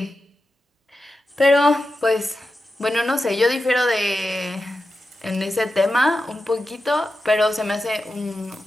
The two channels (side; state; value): both; normal; correlation 0.91